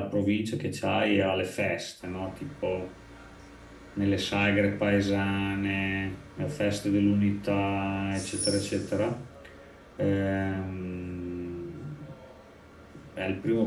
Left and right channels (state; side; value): identical; both; correlation 1.00